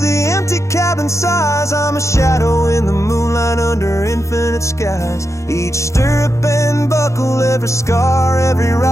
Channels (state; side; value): late; right; 0.14 ms